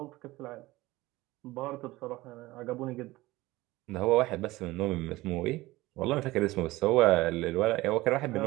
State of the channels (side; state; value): left; quieter; 19.1 dB